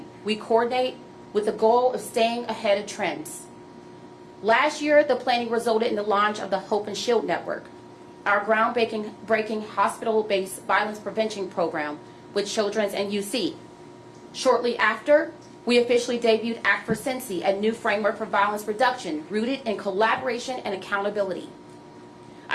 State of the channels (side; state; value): both; identical; correlation 1.00